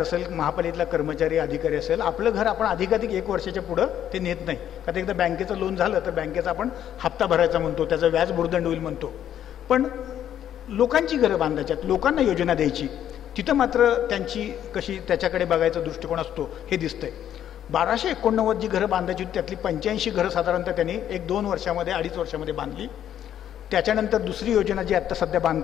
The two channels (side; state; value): right; quieter; 10.5 dB